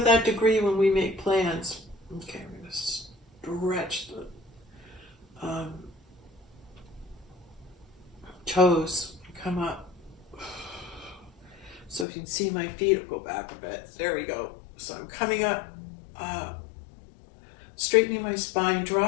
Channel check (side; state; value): right; drops out; at 12.1 s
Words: degree when we make plans. Okay, I'm going to stretch the toes, come up. So if you can see my feet, I'll go back a bit. There we go. So I'm coming up, straightening my spine,